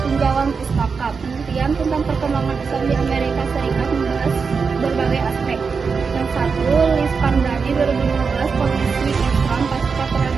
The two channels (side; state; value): left; quieter; 5.3 dB